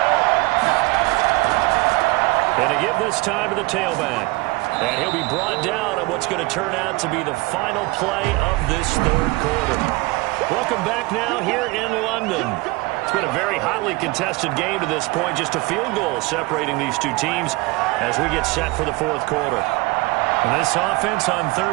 And to give this time to the tailback. And he'll be brought down on what's going to turn out to be the final play of this third quarter. Welcome back now here in London. It's been a very hotly contested game to this point. Just a field goal separating these two teams as we get set for the fourth quarter. And this offense on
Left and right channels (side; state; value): left; quieter; 23.7 dB